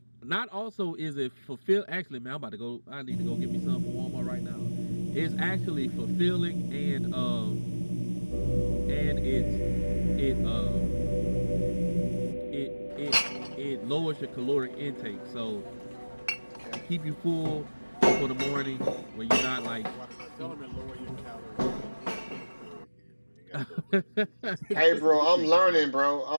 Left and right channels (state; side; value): inverted; both; correlation -1.00